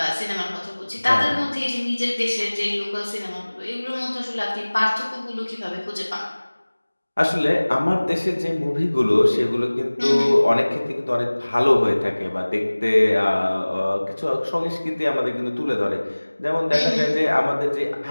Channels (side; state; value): both; inverted; correlation -1.00